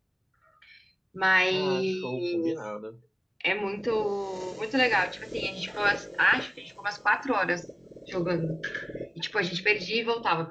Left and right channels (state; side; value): identical; both; correlation 1.00